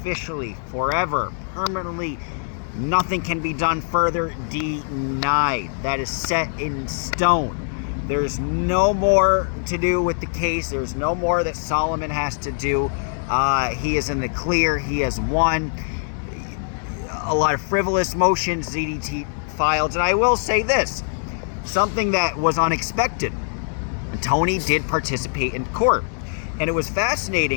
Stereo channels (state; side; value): silent; right; 64 dB below the other